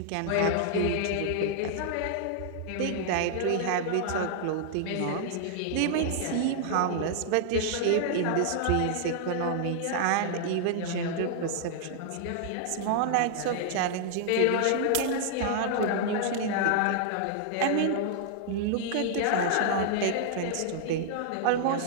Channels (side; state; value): both; different; correlation -0.01